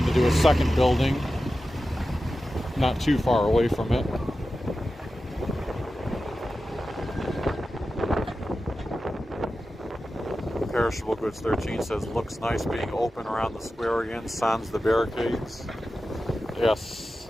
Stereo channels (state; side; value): normal; both; correlation 0.93